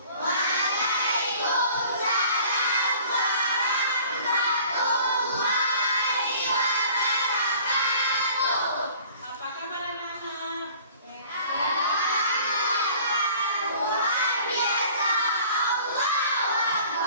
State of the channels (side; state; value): both; inverted; correlation -0.50